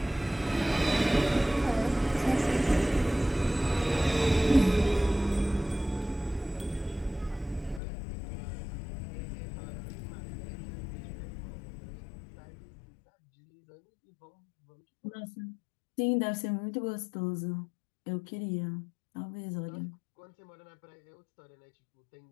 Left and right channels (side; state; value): right; drops out; at 7.8 s